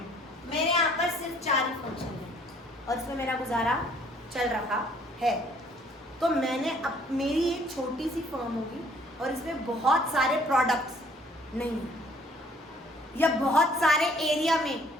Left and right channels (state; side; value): normal; both; correlation 0.60